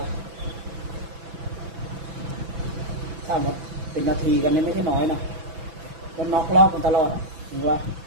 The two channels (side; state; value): left; late; 6.0 ms